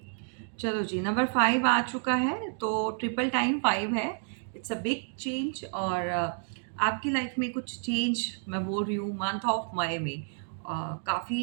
चलो जी, नंबर 5 आ चुका है, तो ट्रिपल टाइम 5 है। इट्स अ बिग चेंज और आपकी लाइफ में कुछ चेंज मैं बोल रही हूँ मंथ ऑफ मई में।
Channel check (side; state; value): left; silent; 58 dB below the other